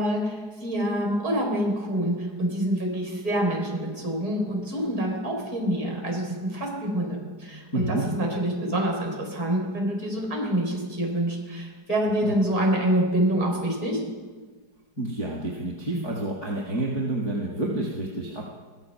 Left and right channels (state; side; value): late; right; 4.8 ms